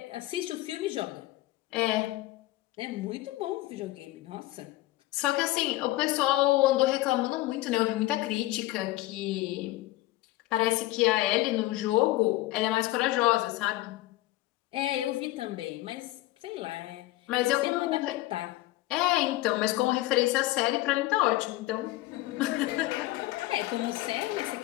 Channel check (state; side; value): quieter; right; 17.7 dB